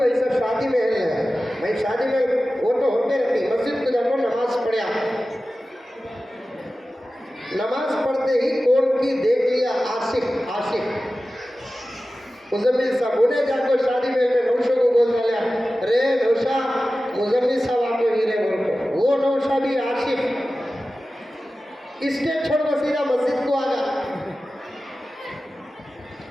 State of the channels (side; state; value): both; normal; correlation 0.95